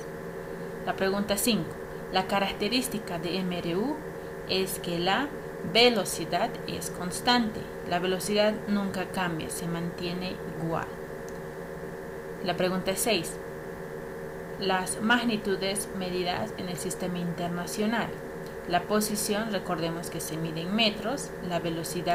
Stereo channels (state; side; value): identical; both; correlation 1.00